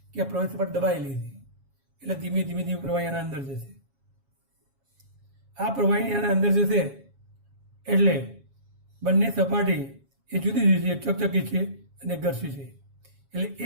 કે આ પ્રવાહી સપાટી દબાઈ લીધી એટલે ધીમે ધીમે ધીમે પ્રવાહી આના અંદર જશે. આ પ્રવાહી આના અંદર જશે એટલે બંને સપાટી એ જુદી જુદી છે. એક ચકચકી છે અને ઘર્ષી છે એટલે એ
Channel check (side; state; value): left; late; 7.3 ms